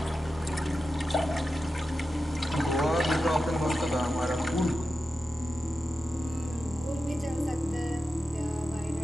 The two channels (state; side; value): normal; both; correlation 0.91